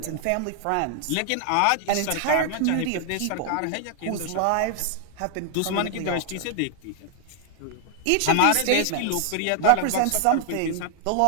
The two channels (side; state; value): both; different; correlation 0.00